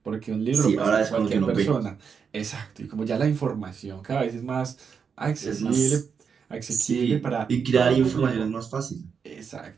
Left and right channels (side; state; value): left; quieter; 6.3 dB